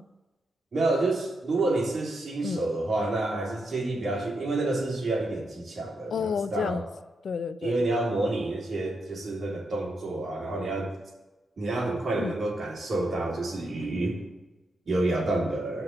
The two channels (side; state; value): both; normal; correlation 0.83